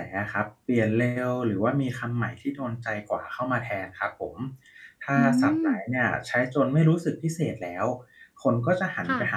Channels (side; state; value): both; identical; correlation 1.00